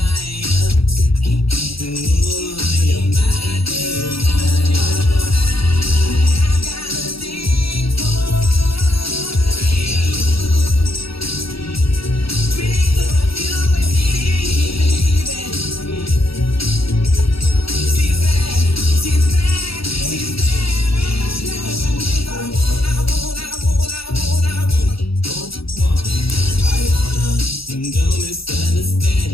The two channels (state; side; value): late; right; 0.76 ms